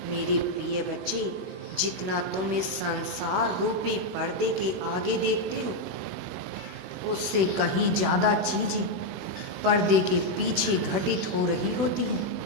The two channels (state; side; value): late; left; 16 ms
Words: मेरे प्रिय बच्चे, जितना तुम इस संसार रूपी पर्दे के आगे देखते हो, उससे कहीं ज्यादा चीजें पर्दे के पीछे घटित हो रही होती हैं,